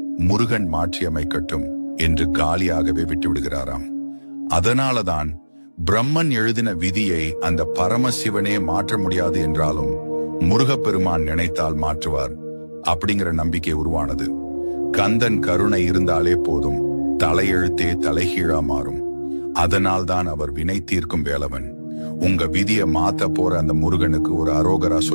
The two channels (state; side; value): inverted; both; correlation -1.00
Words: முருகன் மாற்றி அமைக்கட்டும் என்று காலியாகவே விட்டுவிடுகிறாராம். அதனாலதான் பிரம்மன் எழுதின விதியை அந்த பரமசிவனே மாற்ற முடியாது என்றாலும் முருகப்பெருமான் நினைத்தால் மாற்றுவார் அப்படிங்கிற நம்பிக்கை உருவானது. கந்தன் கருணை இருந்தாலே போதும், தலையெழுத்தே தலைகீழா மாறும். அதனால்தான் அவர் வினை தீர்க்கும் வேலவன். உங்க விதியை மாத்த போற அந்த முருகனுக்கு ஒரு அரோகரா